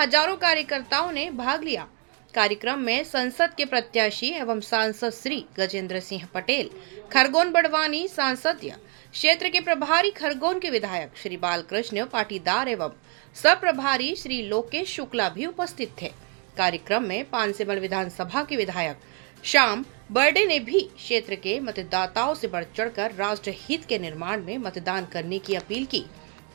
कार्यकर्ताओं ने भाग लिया। कार्यक्रम में संसद के प्रत्याशी एवं सांसद श्री गजेंद्र सिंह पटेल, खरगोन बड़वानी सांसदीय क्षेत्र के प्रभारी खरगोन के विधायक श्री बालकृष्ण पाटीदार एवं सब प्रभारी श्री लोकेश शुक्ला भी उपस्थित थे। कार्यक्रम में पांसेमल विधानसभा के विधायक श्याम बर्डे ने भी क्षेत्र के मतदाताओं से बढ़ चढ़कर राष्ट्र हित के निर्माण में मतदान करने की अपील की।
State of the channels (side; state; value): left; quieter; 32.1 dB